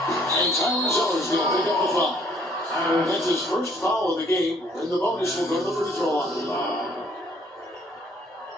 Tyler Zeller's going to pick up the foul. That's his first foul of the game, and the bonus will go to the free throw line.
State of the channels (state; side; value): normal; both; correlation 0.62